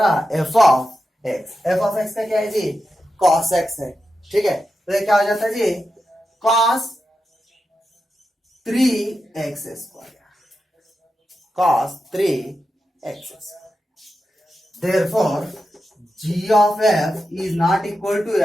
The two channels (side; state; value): both; normal; correlation 0.90